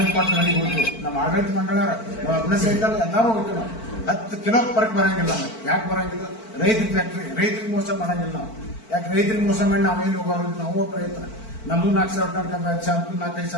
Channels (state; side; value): late; right; 4.5 ms